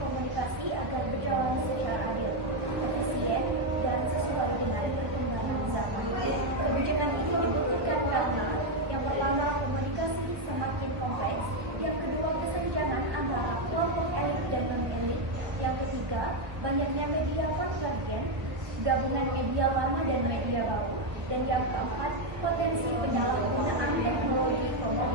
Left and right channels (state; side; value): late; left; 1.1 ms